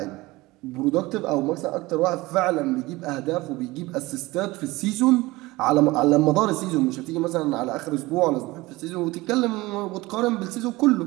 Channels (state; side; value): quieter; left; 20.6 dB